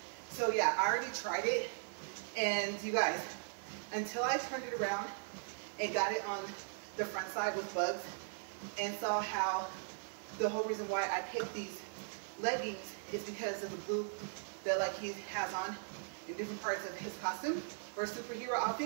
So yeah, I already tried it. And you guys, until I turned it around and got it on the front side with bugs and saw how the whole reason why I picked these leggings is because of the blue that like he has on in different parts of his costume or superhero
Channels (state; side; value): silent; left; 52 dB below the other